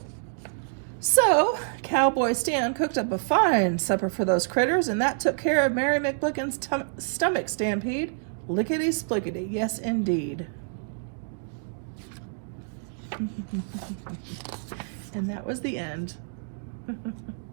So, Cowboy Stan cooked up a fine supper for those critters, and that took care of Mary McBlicken's stomach stampede. Lickety-splickety, yes indeed. And that was the end.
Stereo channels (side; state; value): left; silent; digital silence